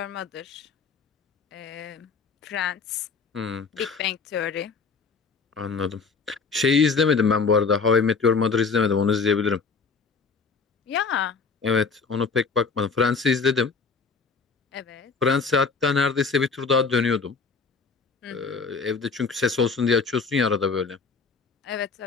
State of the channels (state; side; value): quieter; right; 4.9 dB